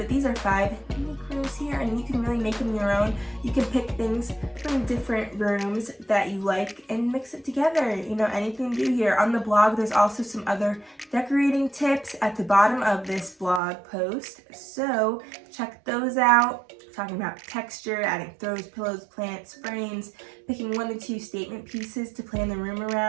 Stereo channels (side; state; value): left; drops out; at 13.6 s